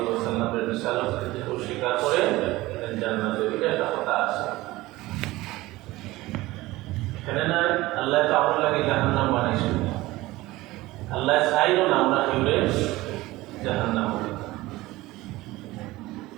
ওয়াসাল্লামের রিসালাতকে স্বীকার করে জান্নাতে গেলে একটা কথা আছে। এখানে না আল্লাহ তো আমার লাগে জাহান্নাম বানাইছে, আল্লাহ চাইল না আমরা কেউরে জাহান্নাম।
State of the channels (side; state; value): left; quieter; 18.8 dB